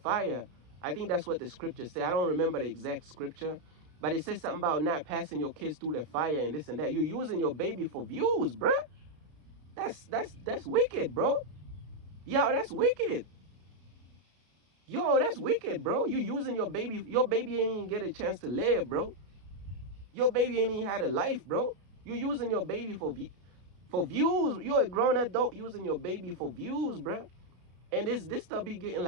I think that's what the scripture say. I don't remember the exact scripture, but it says something about not passing your kids through the fire and this and that. You're using your baby for views, bro. That's wicked, bro. Yo, that's wicked. Yo, that's wicked, bro. You using your baby. Your baby ain't even get a chance to live, bro. Your baby ain't even had a life, bro. You using your baby for views. You're a grown adult using your baby for views, bro. And this stuff be getting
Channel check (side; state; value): left; late; 33 ms